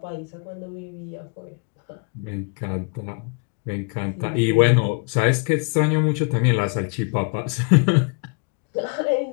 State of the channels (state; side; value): quieter; right; 35.5 dB